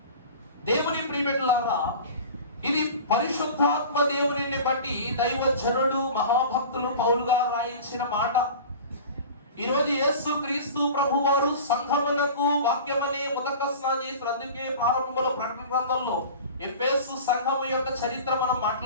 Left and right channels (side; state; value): both; inverted; correlation -0.37